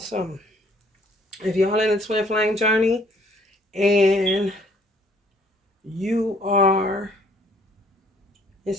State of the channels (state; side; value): normal; both; correlation 0.61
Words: If y'all in a twin flame journey and you are in